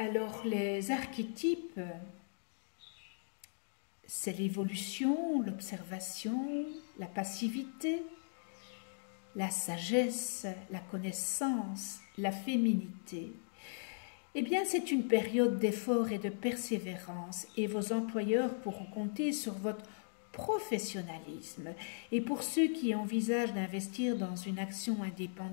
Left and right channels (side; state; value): right; silent; digital silence